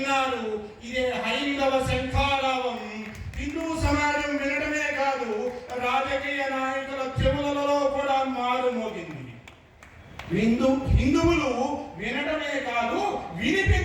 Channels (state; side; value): identical; both; correlation 1.00